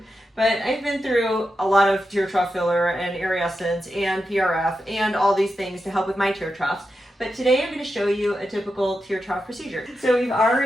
But I've been through a lot of tear trough filler and Essence and PRF and all these things to help with my tear troughs. But today I'm going to show you a typical tear trough procedure. So we've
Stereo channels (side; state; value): both; normal; correlation 0.88